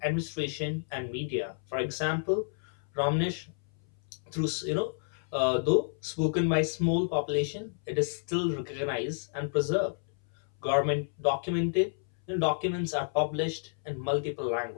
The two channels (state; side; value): silent; right; 57 dB below the other